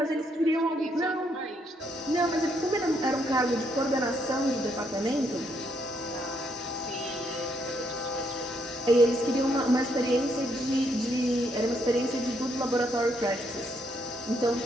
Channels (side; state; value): both; normal; correlation 0.74